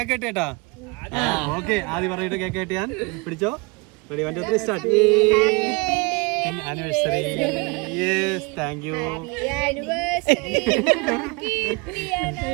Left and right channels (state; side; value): quieter; left; 28.5 dB